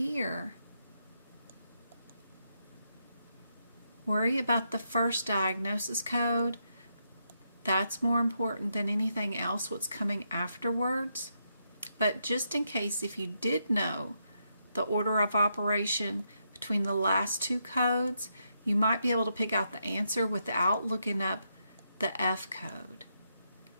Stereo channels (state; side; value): inverted; both; correlation -0.80